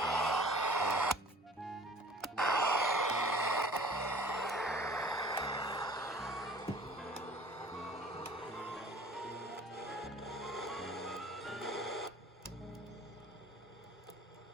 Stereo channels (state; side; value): normal; both; correlation 0.49